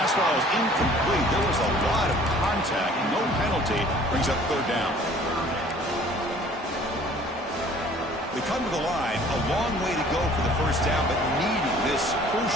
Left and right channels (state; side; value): normal; both; correlation 0.52